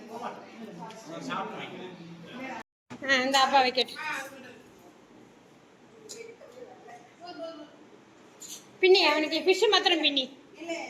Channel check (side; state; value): both; identical; correlation 1.00